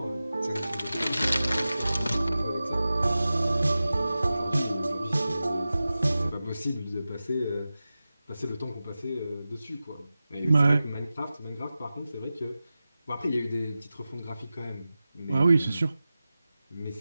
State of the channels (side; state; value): both; inverted; correlation -0.95